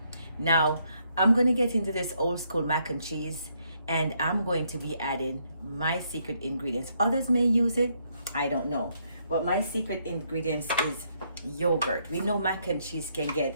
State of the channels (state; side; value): inverted; both; correlation -0.74